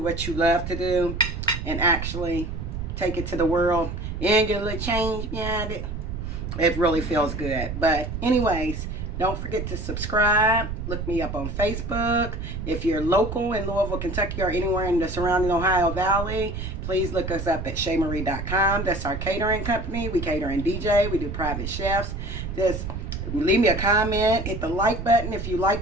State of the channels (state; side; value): noise; right; rumble, 6 dB below the sound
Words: what you love to do and actually take it to the world and get a little change behind it, it really feels good. But anyways, don't forget to subscribe. Look me up on Facebook. If you're local in Louisville, Kentucky, or anywhere in the surrounding Ohio Valley, please look us up at ShayMarie.com. That's our catering company. We cater and DJ. We do private chefs. Just leave me a comment. Hit the like button if you